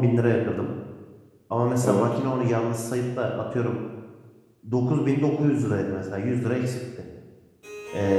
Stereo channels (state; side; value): identical; both; correlation 1.00